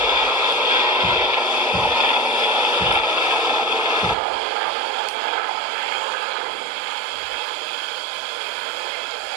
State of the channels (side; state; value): left; drops out; at 4.2 s